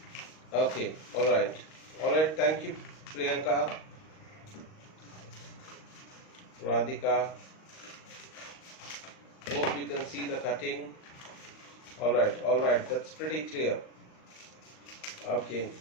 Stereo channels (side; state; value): right; late; 38 ms